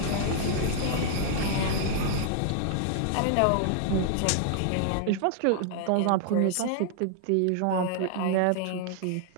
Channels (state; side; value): different; both; correlation 0.00